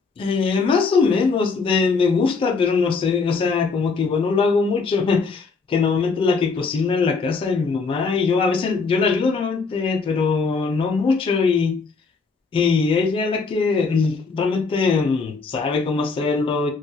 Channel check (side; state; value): right; quieter; 4.6 dB